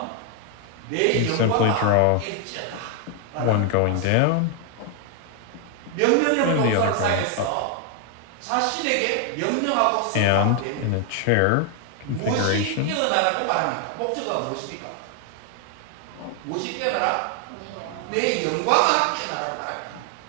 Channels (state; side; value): different; both; correlation 0.00